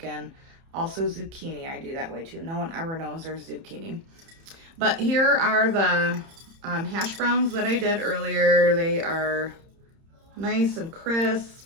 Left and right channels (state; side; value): late; left; 30 ms